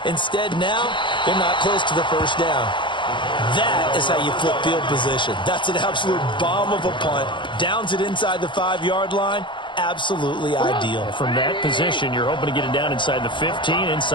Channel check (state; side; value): late; right; 0.23 ms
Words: Instead, now they're not close to the first down. That is how you flip field position. That's an absolute bomb of a punt. Downs it inside the 5-yard line. Absolutely ideal. From that position, you're hoping to get it down inside the 15,